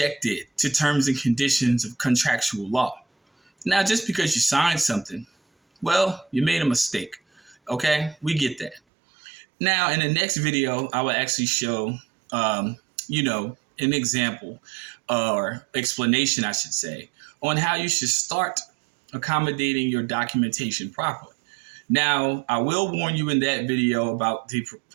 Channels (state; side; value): drops out; left; at 8.8 s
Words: to terms and conditions of contractual law. Now, just because you signed something, well, you made a mistake. Okay, we get that. Now, in the next video, I will actually show, an example or explanation, I should say, on how you should start accommodating your documentation properly. Now, I will warn you in that video about the